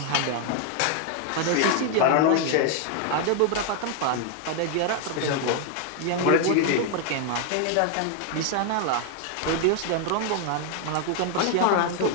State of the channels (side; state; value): both; different; correlation 0.00